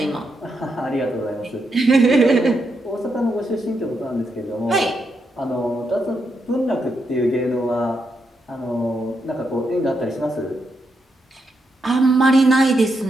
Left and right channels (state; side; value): normal; both; correlation 0.82